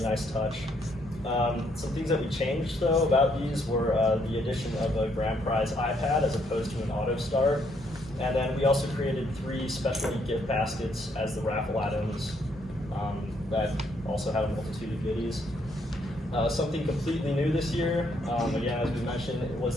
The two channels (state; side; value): normal; both; correlation 0.71